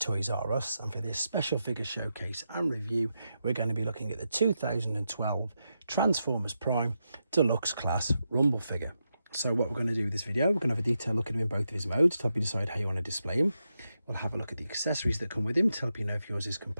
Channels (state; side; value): inverted; both; correlation -0.86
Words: R Us, and for this special figure showcase and review we're going to be looking at the 2012 Transformers Prime Deluxe Class Rumble figure. So what we're going to do with this video, we're going to have a detailed look at him in both of his modes to help you decide how you want to display him. We'll have a look at the accessories that come with him to help you know if yours is